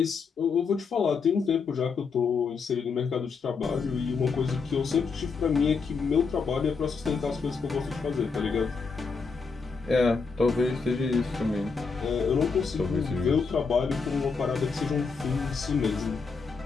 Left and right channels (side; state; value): right; quieter; 5.1 dB